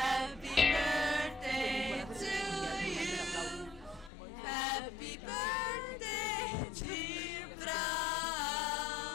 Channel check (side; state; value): right; drops out; at 4.1 s